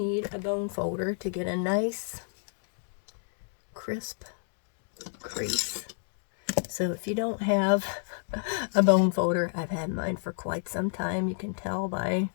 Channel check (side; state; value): right; silent; digital silence